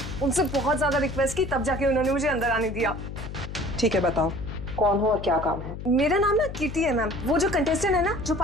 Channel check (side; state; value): left; noise; hum, 9 dB below the sound